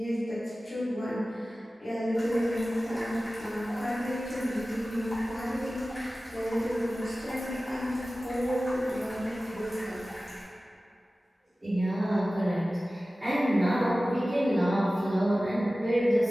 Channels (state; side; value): normal; both; correlation 0.96